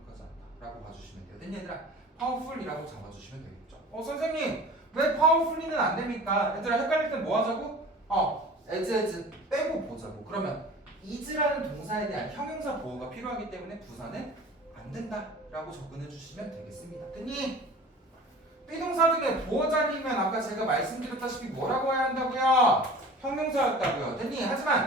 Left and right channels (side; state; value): both; normal; correlation 0.41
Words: 않다라고 봐주시면 돼요. 됐니 얘들아? powerful이라고 잡아주시면 되겠죠. 선생님 왜 powerfully는 안 됩니까? 얘들아 헷갈릴 땐 뭐 하자고? as 빼고 보자고. 그러면 is라는 동사에 대한 형용사 보호가 필요하기 때문에 부사는 안 된다라고 접근해 주시면 되겠습니다. 됐니? 비동사 중에 보호 자리면 아까 제가 말씀드렸다시피 뭐라고 해야 한다고요? 형용사였다고요. 됐니?